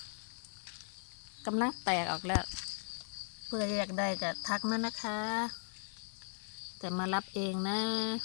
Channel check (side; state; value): right; silent; 53 dB below the other